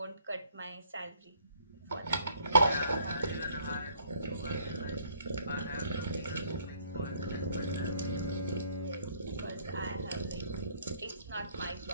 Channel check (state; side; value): inverted; both; correlation -0.63